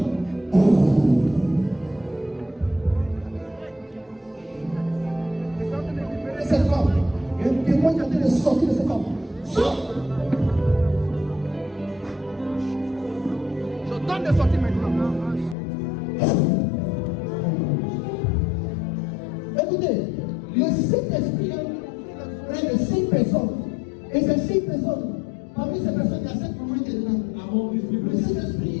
Et cette femme, il y a un témoin qui est en train de sortir de cette femme. Sors! Je donne de sortir maintenant. Écoutez, le Saint-Esprit est près de 6 personnes. Et ces 6 personnes, parmi ces personnes, il y a 7 mamans qui sont là. Among these people, Le Saint-Esprit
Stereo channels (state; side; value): drops out; right; at 15.6 s